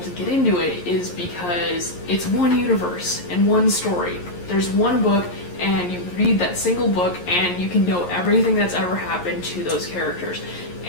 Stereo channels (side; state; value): right; late; 11 ms